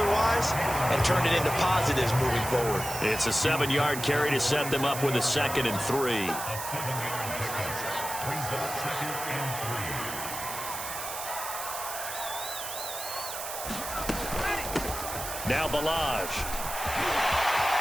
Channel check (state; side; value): noise; right; hiss, 7 dB below the sound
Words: and turn it into positives moving forward. It's a 7-yard carry to set them up with a 2nd and 3. Now Balazs.